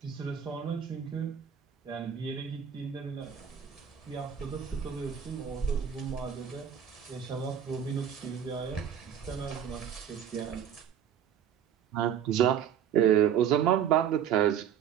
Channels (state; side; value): quieter; left; 8.8 dB